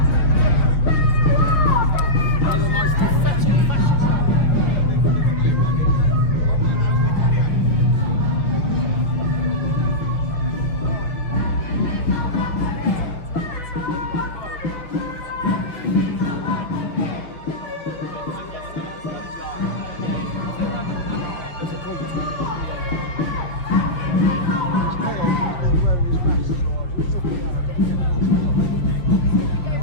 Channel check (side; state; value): right; late; 5.8 ms